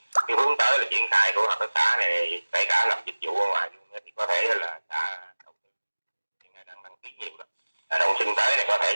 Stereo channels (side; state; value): both; inverted; correlation -1.00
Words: hướng tới là triển khai của hợp tác xã này, kể cả làm dịch vụ ở ngoài luôn thì có thể là xã đầu tư hiện nay đang đăng ký nhiều đó. Đông xuân tới này có thể